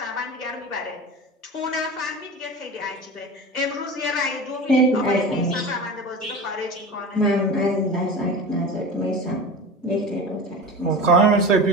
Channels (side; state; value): both; normal; correlation 0.31